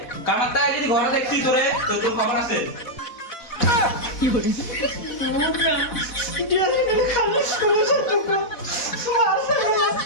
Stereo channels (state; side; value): late; right; 4.1 ms